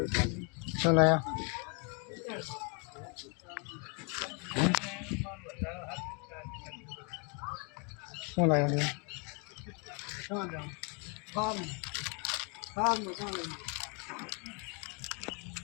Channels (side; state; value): right; quieter; 34.9 dB